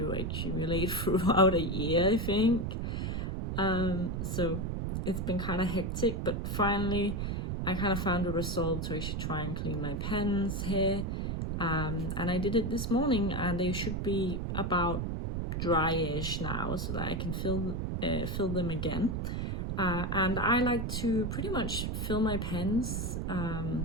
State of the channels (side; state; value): right; noise; rumble, 1 dB below the sound